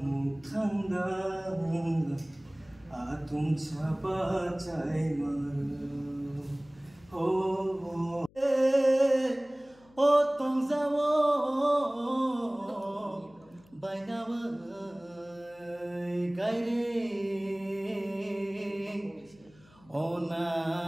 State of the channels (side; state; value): left; noise; hum, 28 dB below the sound